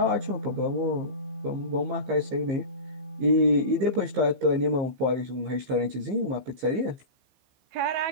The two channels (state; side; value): late; left; 15 ms